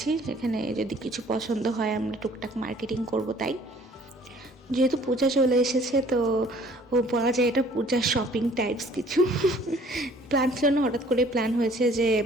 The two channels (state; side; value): normal; both; correlation 0.55